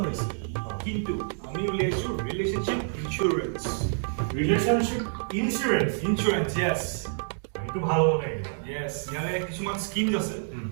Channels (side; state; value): left; silent; digital silence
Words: হৈছে কিন্তু আমি উলিয়াইছোঁ ৰিলেশ্যনশ্বিপ ইঞ্চুৰেঞ্চ ইঞ্চুৰেঞ্চ য়েছ এইটো ভাল হ'ব লাগে য়েছ ইয়াৰে কিছুমান স্কিমছ আছে